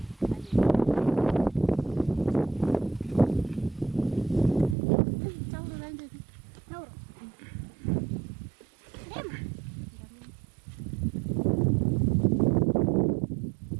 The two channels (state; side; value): drops out; left; at 4.8 s